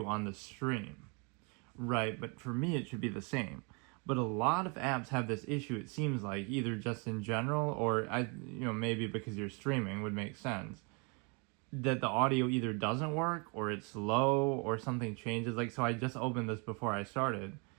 on the stream. Right, but for me it should be the same. But a lot of apps have this issue, it seems like, either just in general or maybe because you're streaming would make sense. That the audio either doesn't work or it's low or something changes. Like so I just opened this before I started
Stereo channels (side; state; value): left; quieter; 33.5 dB